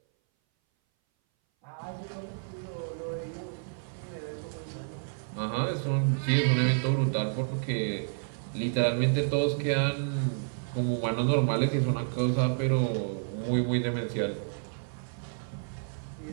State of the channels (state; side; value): silent; left; 58 dB below the other